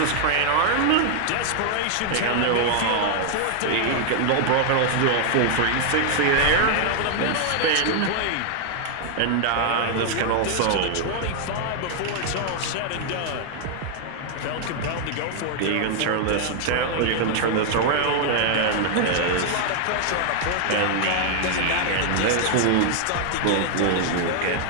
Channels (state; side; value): different; both; correlation 0.00